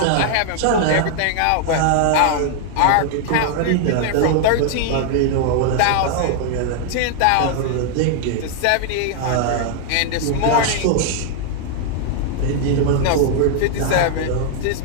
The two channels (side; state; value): both; different; correlation 0.00